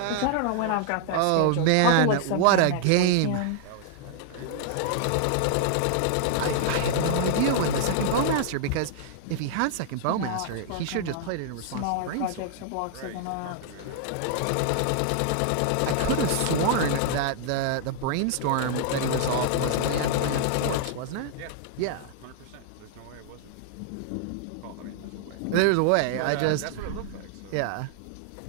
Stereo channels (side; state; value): both; different; correlation -0.01